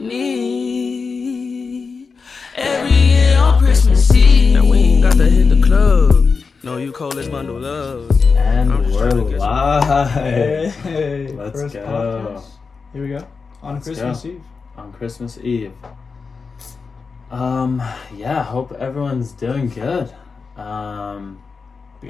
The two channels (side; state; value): right; quieter; 4.9 dB